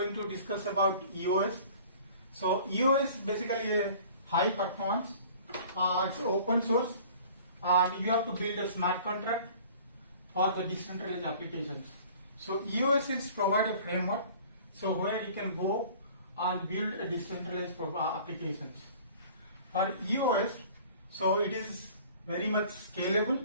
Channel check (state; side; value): inverted; both; correlation -0.48